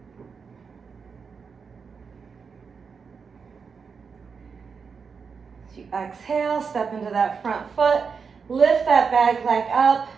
As you exhale, step into that front foot, lift that back leg up.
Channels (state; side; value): quieter; left; 5.7 dB